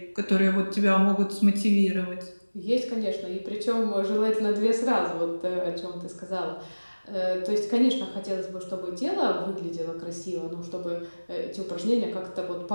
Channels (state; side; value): inverted; both; correlation -1.00